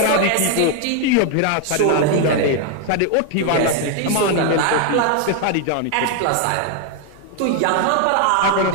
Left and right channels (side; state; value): both; different; correlation 0.00